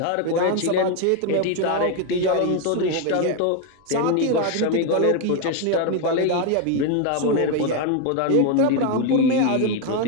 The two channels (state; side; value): different; both; correlation 0.01